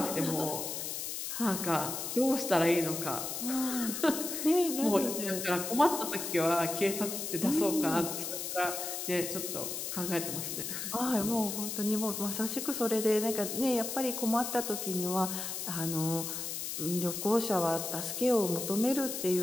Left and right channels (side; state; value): left; noise; hiss, 4 dB below the sound